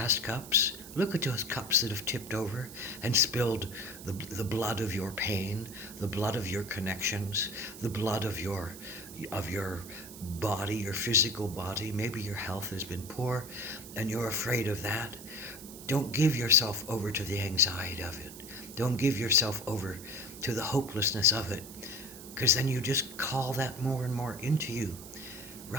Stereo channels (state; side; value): noise; right; hiss, 14 dB below the sound